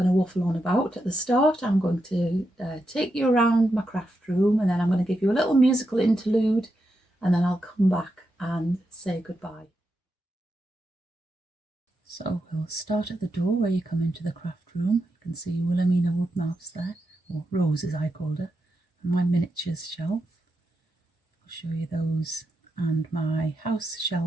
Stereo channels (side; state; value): both; normal; correlation 0.86